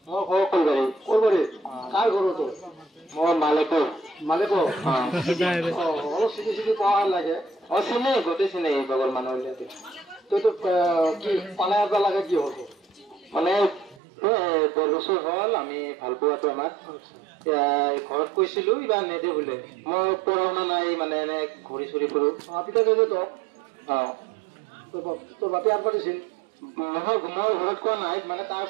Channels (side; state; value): left; drops out; at 14.0 s